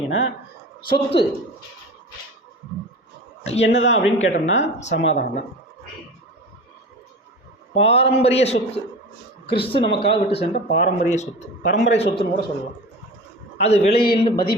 சொத்து என்னதான் அப்படின்னு கேட்டோம்னா சமாதானம் தான். பாரம்பரிய சொத்து, கிறிஸ்து நமக்காக விட்டு சென்ற பாரம்பரிய சொத்து, பரம்பரை சொத்துன்னு கூட சொல்லலாம். அது விலையில்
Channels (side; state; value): both; normal; correlation 0.33